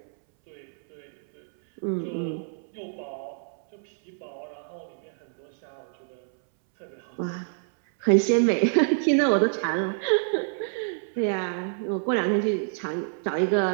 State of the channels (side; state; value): left; silent; 60 dB below the other